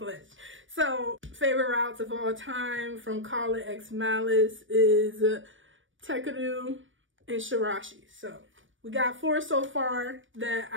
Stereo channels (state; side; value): late; left; 0.56 ms